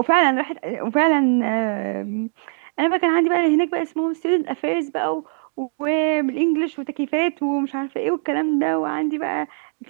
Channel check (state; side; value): silent; left; 65 dB below the other